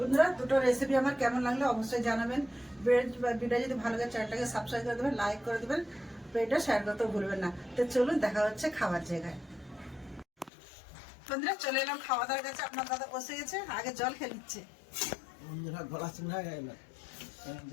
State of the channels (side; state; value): right; drops out; at 10.5 s